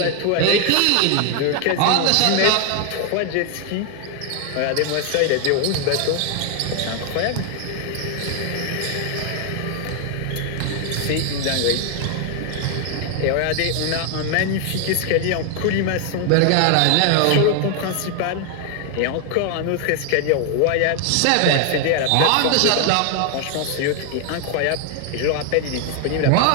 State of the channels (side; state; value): both; different; correlation 0.00